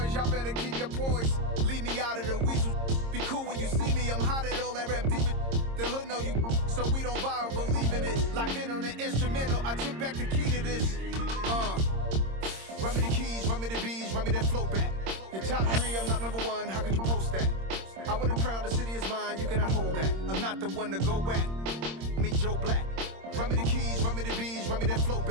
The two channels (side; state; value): left; late; 26 ms